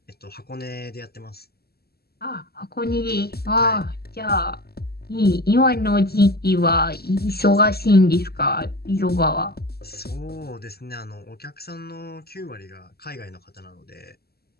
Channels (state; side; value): late; right; 0.46 ms